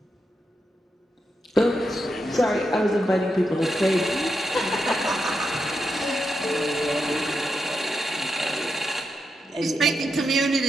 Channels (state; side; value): normal; both; correlation 0.85